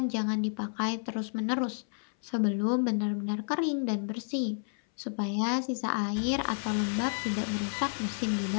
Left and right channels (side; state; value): right; silent; 57 dB below the other